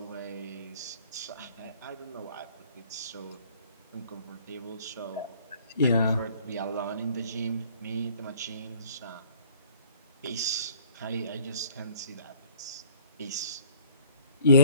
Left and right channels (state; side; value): inverted; both; correlation -0.54